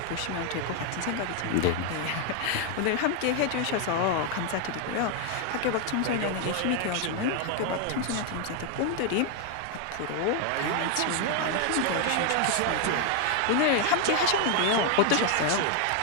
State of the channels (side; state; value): both; different; correlation 0.00